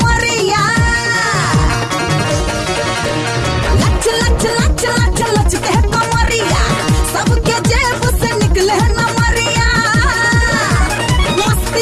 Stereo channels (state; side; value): identical; both; correlation 1.00